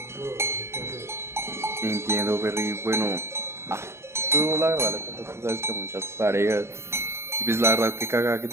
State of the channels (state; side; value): late; left; 0.13 ms